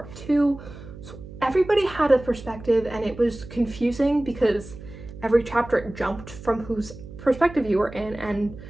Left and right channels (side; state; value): right; noise; hum, 15 dB below the sound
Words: 2. So everybody had a perspective, and it was confusing because every chapter it jumped from whose perspective you were in, and